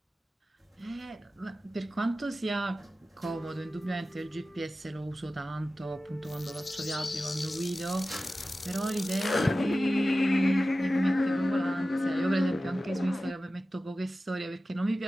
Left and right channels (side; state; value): both; normal; correlation 0.95